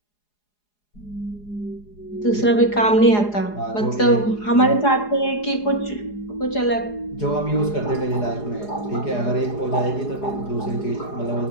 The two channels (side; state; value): right; late; 4.8 ms